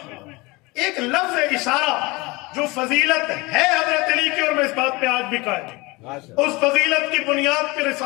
ایک لفظ اشارہ جو فضیلت ہے حضرت علی کی، اور میں اس بات پہ آج بھی قائم ہوں، اس فضیلت کی بنیاد پہ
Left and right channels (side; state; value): right; quieter; 24.0 dB